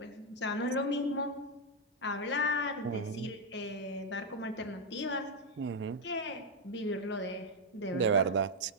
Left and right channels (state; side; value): normal; both; correlation 0.01